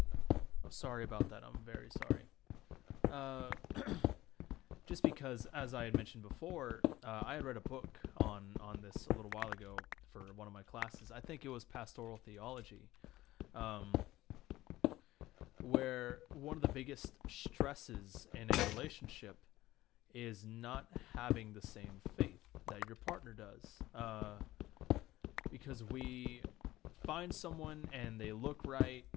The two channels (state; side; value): quieter; right; 16.6 dB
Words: sorry about that, I'm very sorry. Just because, as I had mentioned before, I had read a book on this a little while ago for one of my classes. I think it was pastoral theology, where one of the biggest stresses in a relationship is not having the same faith that your partner does. Because we find someone and they look right,